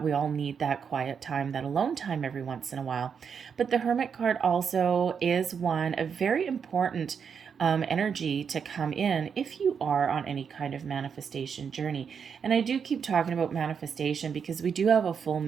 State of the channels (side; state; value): left; quieter; 6.8 dB